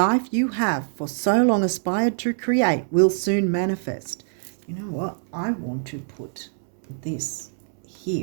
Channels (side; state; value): left; silent; digital silence